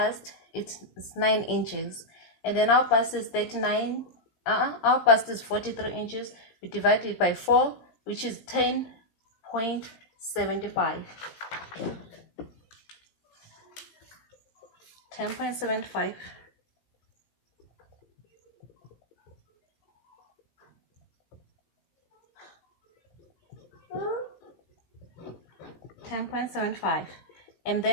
it's 9 inches. And then our bust is 39, our bust is 43 inches. We divide it by 4, which is 10.75. 10.75. 10.75. And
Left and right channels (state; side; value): late; right; 17 ms